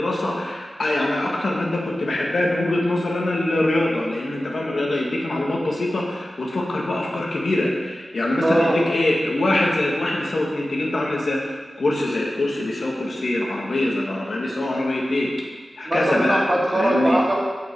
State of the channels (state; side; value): normal; both; correlation 0.94